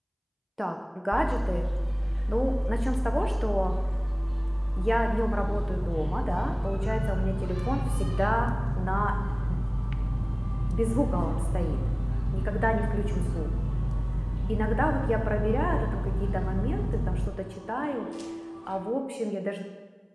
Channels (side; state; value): both; identical; correlation 1.00